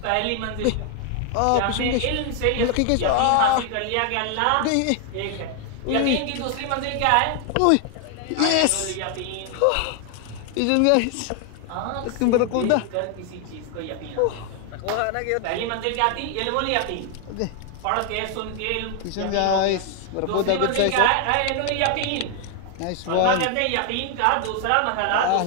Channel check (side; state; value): both; different; correlation 0.00